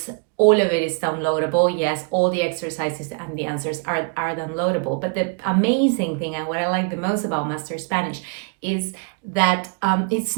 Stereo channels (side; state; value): left; quieter; 36.9 dB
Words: all of it is downloadable. Yes, all the exercises and the answers are downloadable. But the amazing thing and what I like the most about Master Spanish is that it's